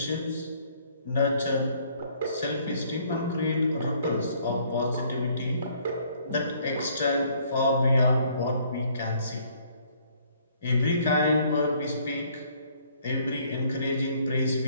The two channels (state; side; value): inverted; both; correlation -0.63